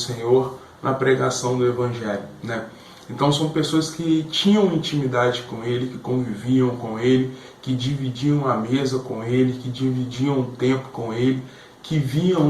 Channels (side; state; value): both; identical; correlation 1.00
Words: na pregação do Evangelho, né? Então são pessoas que tinham intimidade com ele, que conviviam com ele, que dividiam a mesa com ele, que dividiam o tempo com ele, que viam